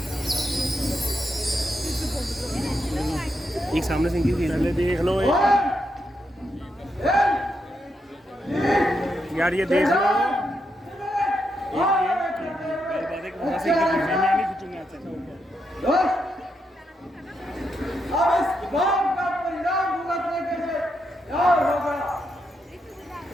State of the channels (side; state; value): both; normal; correlation 0.82